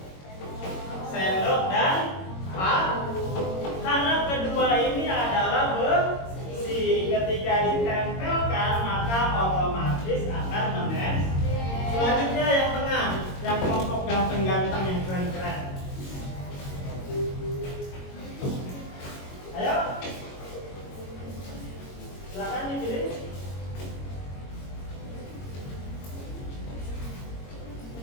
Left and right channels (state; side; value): late; right; 22 ms